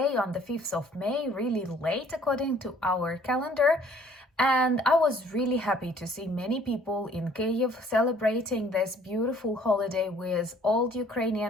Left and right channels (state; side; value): normal; both; correlation 0.57